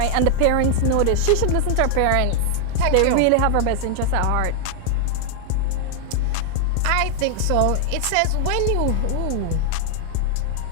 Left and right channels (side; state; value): both; different; correlation 0.00